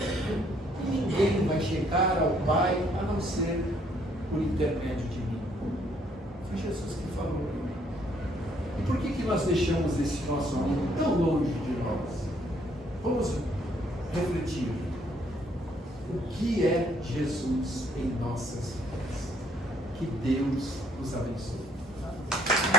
E ninguém vai chegar ao Pai a não ser por intermédio de mim. Foi Jesus que falou. E por que nós deixamos esse nosso amigo tão longe de nós? Vamos refletir. O que é Jesus em nossas vidas? Que Deus nos abençoe.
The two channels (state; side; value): normal; both; correlation 0.66